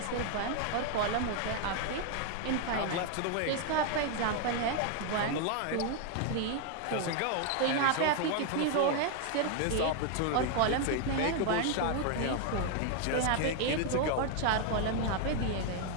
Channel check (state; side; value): different; both; correlation 0.00